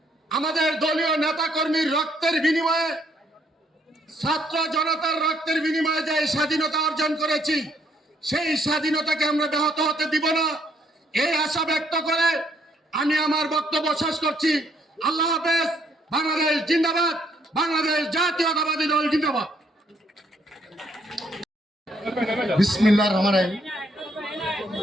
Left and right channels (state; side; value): normal; both; correlation 0.69